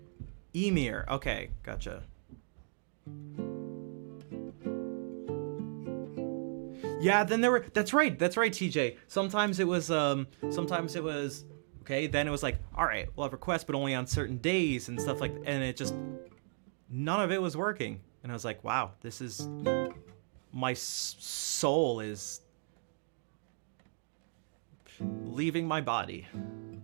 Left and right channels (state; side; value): silent; left; digital silence